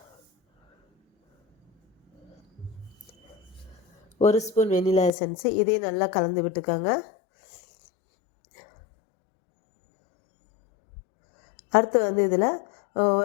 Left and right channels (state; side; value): drops out; right; at 5.1 s